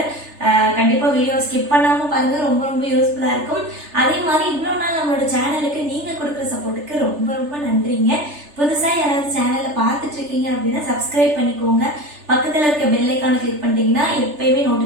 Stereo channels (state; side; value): late; left; 3.3 ms